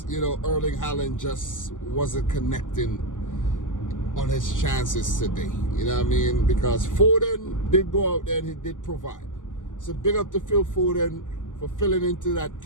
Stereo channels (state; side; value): late; right; 0.87 ms